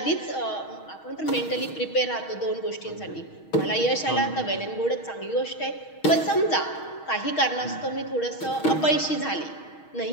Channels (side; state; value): right; late; 6.3 ms